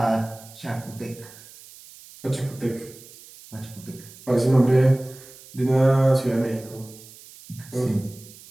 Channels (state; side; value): noise; right; hiss, 20 dB below the sound